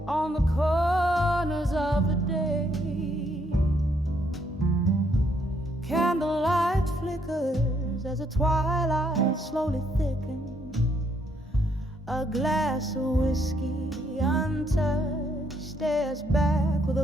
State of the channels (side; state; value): both; normal; correlation 0.72